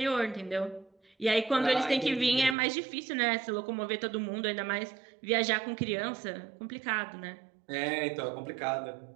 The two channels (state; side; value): drops out; left; at 2.6 s